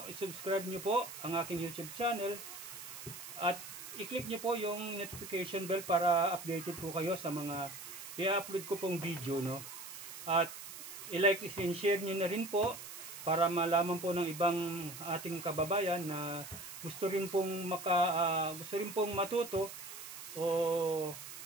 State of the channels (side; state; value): right; noise; hiss, 11 dB below the sound